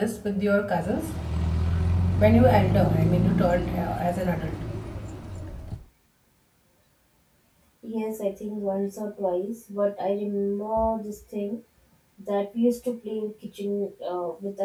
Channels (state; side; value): identical; both; correlation 1.00